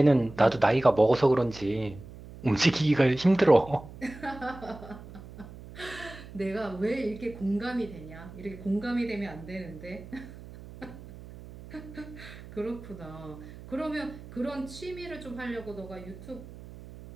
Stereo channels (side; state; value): right; noise; hum, 16 dB below the sound